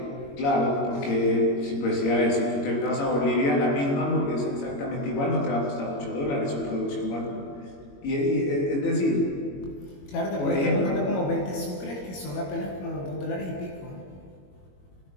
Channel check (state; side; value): late; right; 21 ms